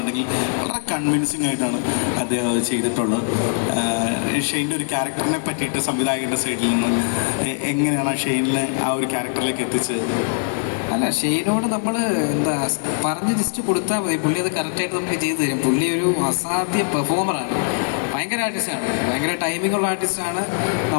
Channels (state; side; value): silent; right; digital silence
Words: വളരെ കൺവിൻസിങ് ആയിട്ടാണ് അദ്ദേഹം അത് ചെയ്തിട്ടുള്ളത്. ഷെയ്നിൻ്റെ ഒരു ക്യാരക്ടറിനെ പറ്റിയിട്ട് സംവിധായകൻ്റെ സൈഡിൽ നിന്ന് എങ്ങനെയാണ് ആ ഷെയ്നിനെ ആ ഒരു ക്യാരക്ടറിലേക്ക് എത്തിച്ചത്? അല്ല, ഷെയ്നോട് നമ്മൾ പറഞ്ഞ് ജസ്റ്റ് കൊടുത്താൽ മതി, പുള്ളി അത് കറക്റ്റായിട്ട് നമുക്ക് ചെയ്തു തരും. പുള്ളി ഒരു അസാധ്യ പെർഫോമറാണ്, ഭയങ്കര ആർട്ടിസ്റ്റാണ്, ഭയങ്കര ടൈമിങ്ങുള്ള ആർട്ടിസ്റ്റാണ്.